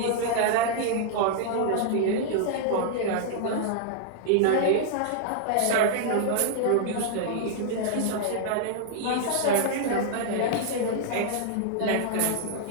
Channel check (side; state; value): both; different; correlation -0.01